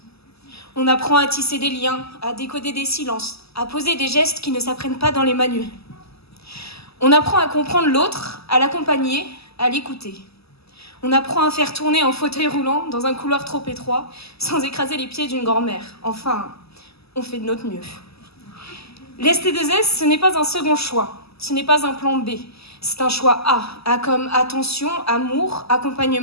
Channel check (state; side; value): late; right; 0.78 ms